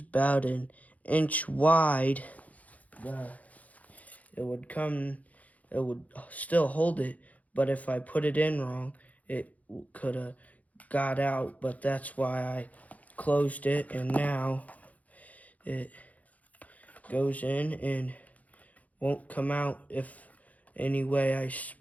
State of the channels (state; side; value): late; right; 0.073 ms